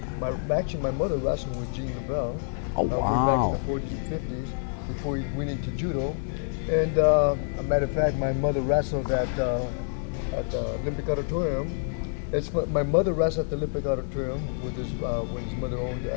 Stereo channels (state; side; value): silent; right; digital silence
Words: Actually, my mother wrestled with Rebelo way back in the 40s and 50s before he went into judo. And a matter of fact, my mother wrestled at the Olympic Auditorium. My mother wrestled at the Olympic Auditorium with when his mother owned